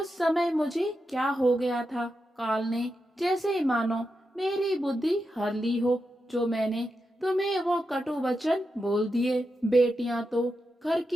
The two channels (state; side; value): normal; both; correlation 0.87